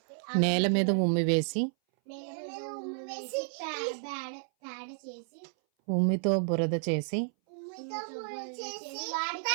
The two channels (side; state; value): left; silent; 57 dB below the other